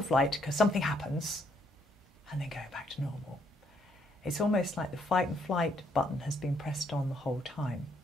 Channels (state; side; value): normal; both; correlation 0.71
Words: flight because something happens and then going back to normal, it's almost like the fight and flight button has been pressed on the whole time.